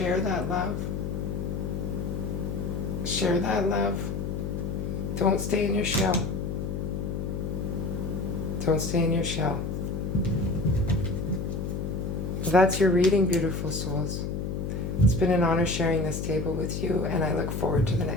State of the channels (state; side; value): noise; left; hum, 3 dB below the sound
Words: that love. Share that love. Don't stay in your shell. Don't stay in your shell. That's your reading, beautiful souls. It's been an honor sharing this table with you, and I look forward to the